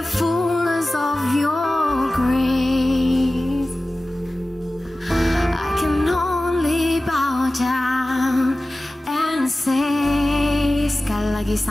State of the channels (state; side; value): normal; both; correlation 0.96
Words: fullness of your grace. I can only bow down and say, sekali lagi